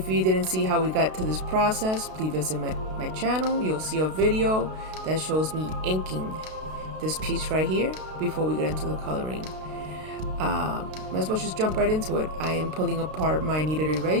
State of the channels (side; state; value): left; late; 32 ms